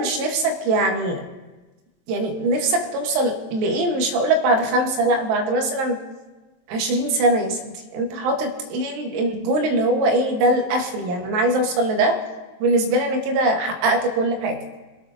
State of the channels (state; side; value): late; left; 23 ms